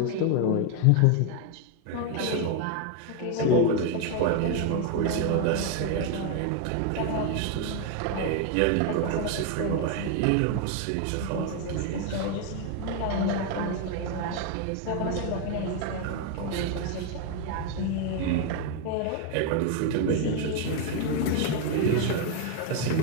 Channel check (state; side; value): different; both; correlation 0.01